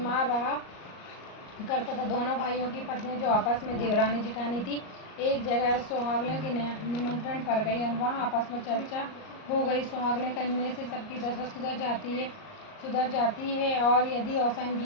रहा करता था। दोनों भाइयों की पत्नी जो आपस में देवरानी जेठानी थी, एक जगह सुहागने के निमंत्रण पर गई और वहाँ आपस में चर्चा हो गई। सुहागने करने से सबकी दशा सुधर जाती है और यदि औसान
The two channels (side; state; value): right; late; 38 ms